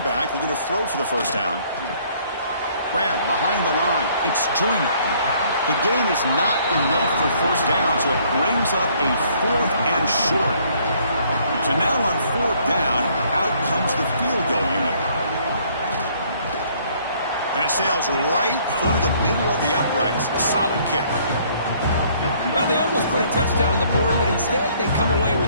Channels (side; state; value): both; inverted; correlation -0.62